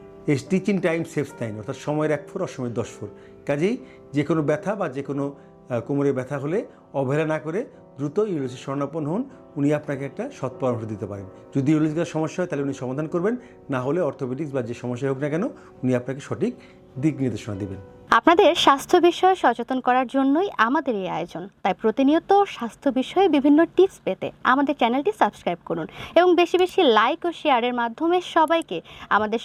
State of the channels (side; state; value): both; identical; correlation 1.00